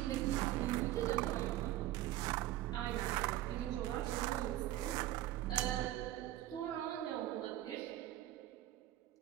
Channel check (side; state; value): left; quieter; 14.7 dB